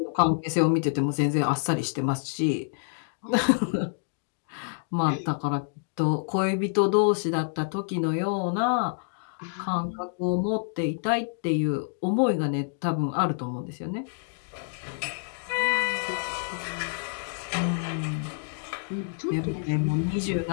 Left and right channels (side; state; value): right; silent; digital silence